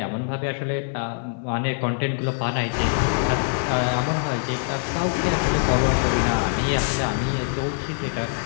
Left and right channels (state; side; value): silent; right; 63 dB below the other